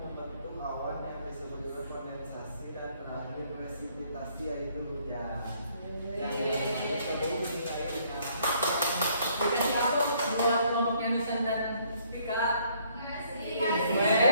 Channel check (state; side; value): inverted; both; correlation -0.65